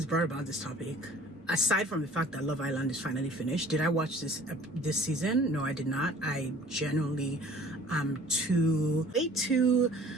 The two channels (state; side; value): normal; both; correlation 0.50